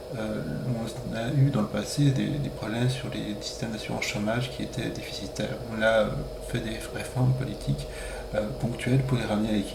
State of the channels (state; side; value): identical; both; correlation 1.00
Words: On a eu dans le passé des problèmes sur les systèmes d'assurance chômage qui étaient déficitaires. On a fait des réformes politiques ponctuelles pour les ramener à